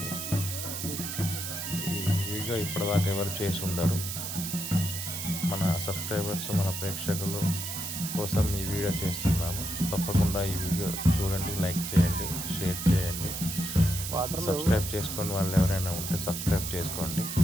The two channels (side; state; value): right; noise; hiss, 5 dB below the sound